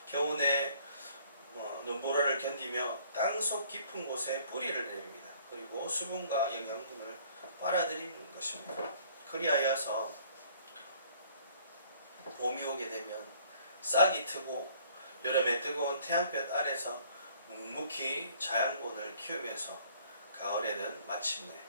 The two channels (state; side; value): inverted; both; correlation -0.57